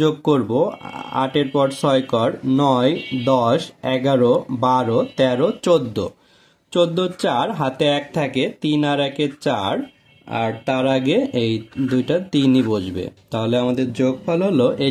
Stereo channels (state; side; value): identical; both; correlation 1.00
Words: যোগ করব, 8 এর পর 6 কর, 9 10 11 12 13 14, 14 4 হাতে 1 থাকে, 3 আর 1 4, আর তার আগে এই দুইটা 3ই বসবে, তাহলে আমাদের যোগফল হলো